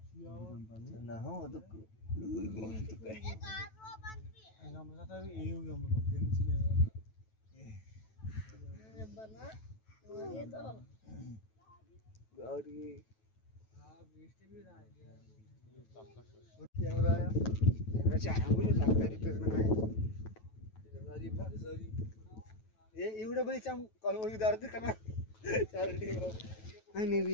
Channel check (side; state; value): right; late; 9.2 ms